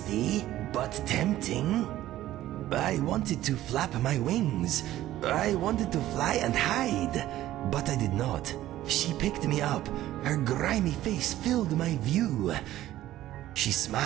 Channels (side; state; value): left; quieter; 14.2 dB